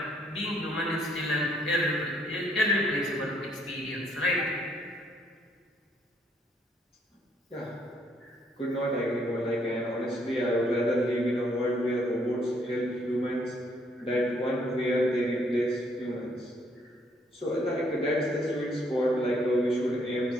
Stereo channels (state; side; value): normal; both; correlation 0.68